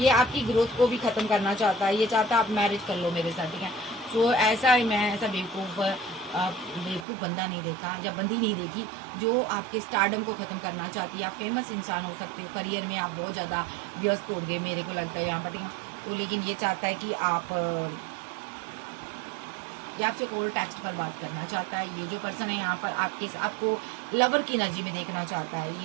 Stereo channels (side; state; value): left; drops out; at 7.1 s